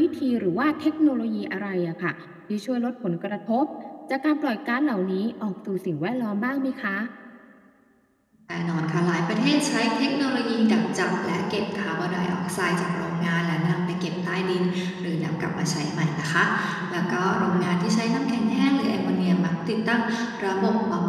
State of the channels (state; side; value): identical; both; correlation 1.00